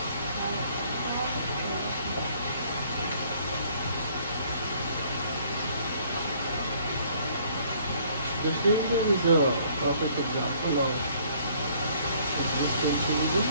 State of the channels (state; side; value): inverted; both; correlation -0.60